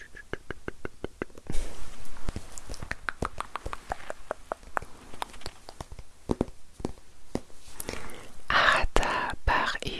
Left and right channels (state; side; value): identical; both; correlation 1.00